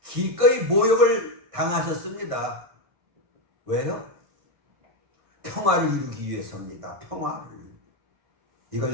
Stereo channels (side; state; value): left; late; 1.6 ms